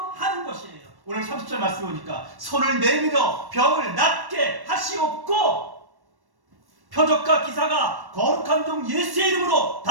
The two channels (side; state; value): left; late; 1.1 ms